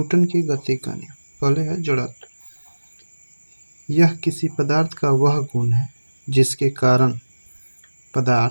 की गति का नियम। पहले है जड़त्व। यह किसी पदार्थ का वह गुण है जिसके कारण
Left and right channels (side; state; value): both; inverted; correlation -1.00